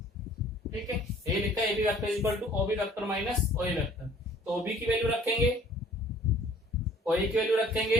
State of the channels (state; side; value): normal; both; correlation 0.54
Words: ठीक है। ये लिखा है A B vector is equal to O B vector minus O vector. तो ओ बी की वैल्यू रखेंगे, ओ ए की वैल्यू